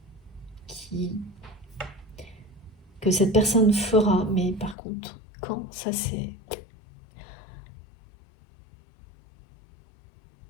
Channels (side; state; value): right; drops out; at 4.8 s